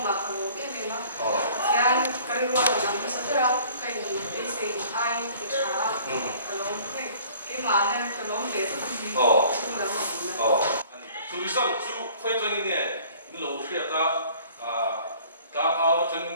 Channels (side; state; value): both; inverted; correlation -0.52